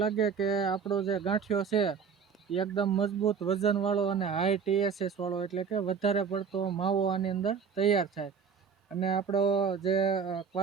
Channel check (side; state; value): left; quieter; 6.4 dB